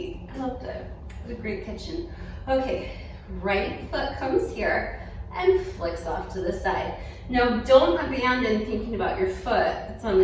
I loved it. It was a great kitchen. Okay, right foot comes here and flicks off to the side. Now don't abandon thinking about your foot that's on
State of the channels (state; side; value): identical; both; correlation 1.00